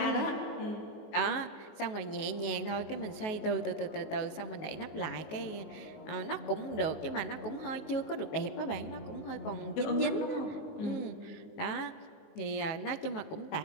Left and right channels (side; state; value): right; late; 19 ms